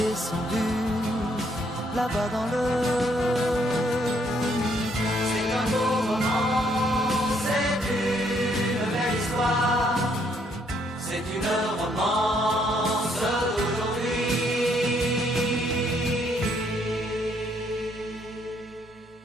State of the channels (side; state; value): both; normal; correlation 0.70